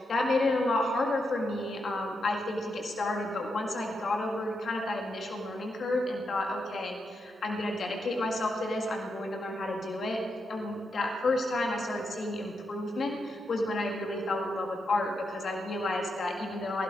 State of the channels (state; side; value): normal; both; correlation 0.84